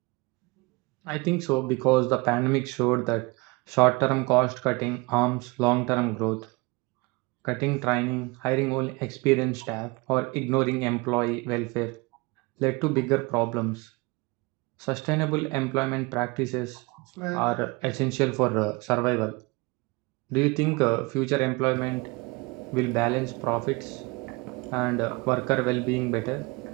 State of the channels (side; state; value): left; quieter; 25.6 dB